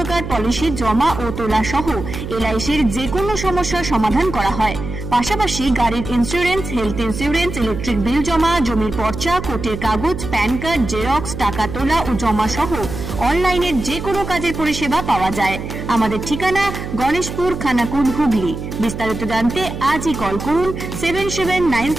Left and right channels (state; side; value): noise; right; hum, 8 dB below the sound